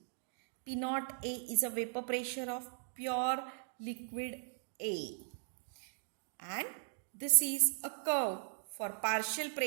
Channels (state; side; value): silent; left; digital silence